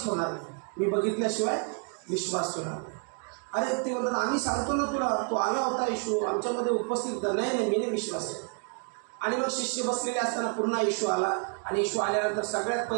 ठेवणार नाही, मी बघितल्याशिवाय विश्वास ठेवणार. अरे ते म्हणतात आम्ही सांगतो ना तुला, तो आला होता येशू आमच्यामध्ये उपस्थित, नाही मी नाही विश्वास ठेवला. आणि मग शिष्य बसलेले असताना पुन्हा येशू आला, आणि येशू आल्यानंतर सगळ्यात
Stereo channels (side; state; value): left; quieter; 39.0 dB